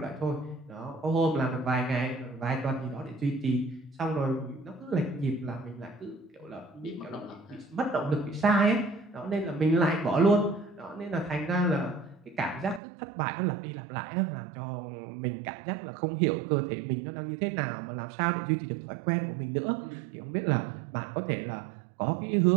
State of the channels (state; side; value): drops out; left; at 12.8 s